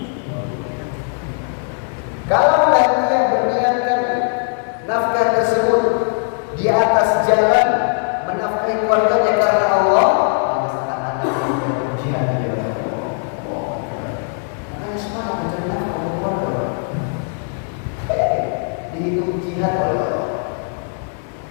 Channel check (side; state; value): right; silent; 56 dB below the other